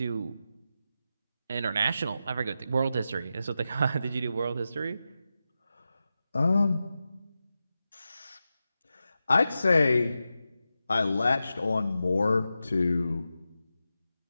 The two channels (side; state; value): both; inverted; correlation -0.91